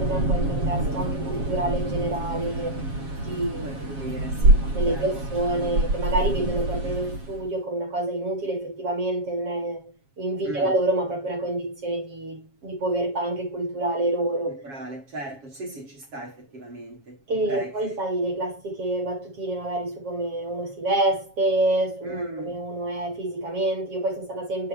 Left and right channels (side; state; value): left; late; 7.3 ms